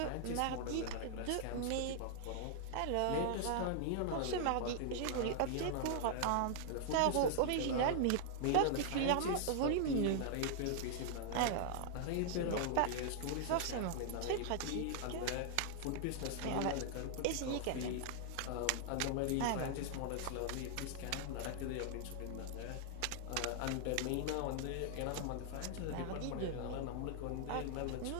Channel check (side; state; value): both; different; correlation -0.01